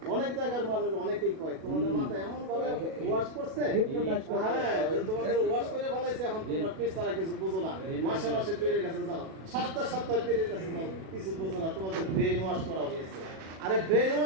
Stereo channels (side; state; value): left; late; 37 ms